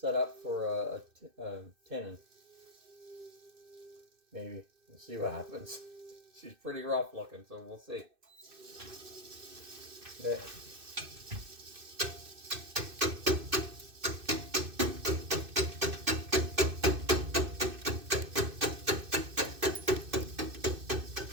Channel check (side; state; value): left; late; 2.6 ms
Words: up for a tenon. Maybe. We'll see what happens. She's pretty rough looking, so we'll see. Okay.